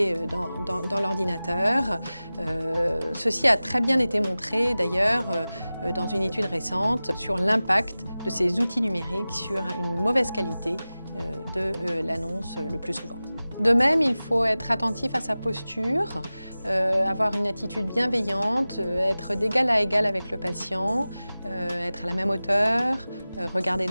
dans l'ordinateur. Ceci a très bien été montré d'ailleurs dans une étude récente sur l'impact de ces outils numériques sur une mauvaise qualité de l'annonce le plus souvent. De même, il faut être attentif à sa posture, avoir une attitude bienveillante, être d'égal à égal avec le patient, être à la même hauteur, regarder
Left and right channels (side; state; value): both; inverted; correlation -0.97